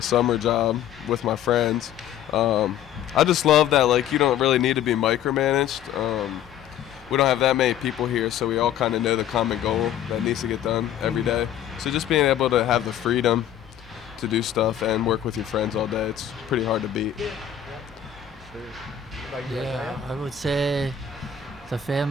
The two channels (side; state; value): right; quieter; 9.9 dB